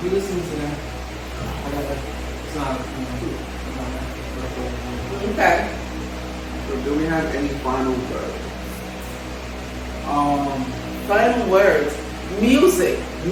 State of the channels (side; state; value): both; identical; correlation 1.00